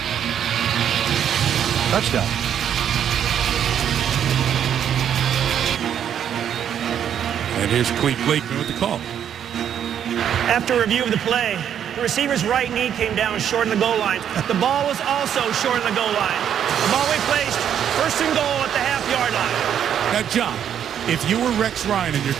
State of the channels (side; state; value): left; quieter; 9.2 dB